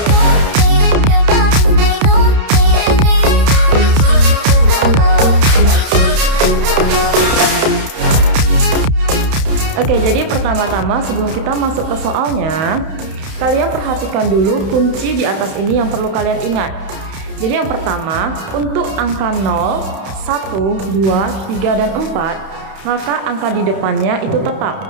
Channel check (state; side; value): late; left; 31 ms